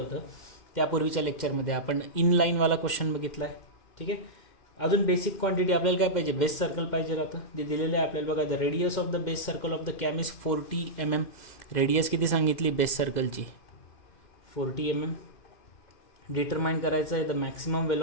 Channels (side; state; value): right; late; 2.1 ms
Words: त्यापूर्वीच्या लेक्चरमध्ये आपण इनलाईनवाला क्वेश्चन बघितला आहे. ठीक आहे, अजून बेसिक क्वांटिटी आपल्याला काय पाहिजे, बेस सर्कल पाहिजे राहतं, जे दिलेलं आहे आपल्याला. बघा the radius of the base circle of the cam is 40 mm. Radius किती सांगितली बेस सर्कलची, 40 mm. डिटरमाइन करायचं आहे the maximum